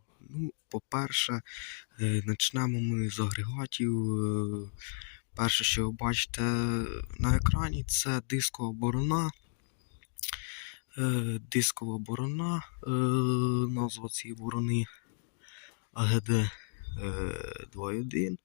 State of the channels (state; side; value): silent; right; digital silence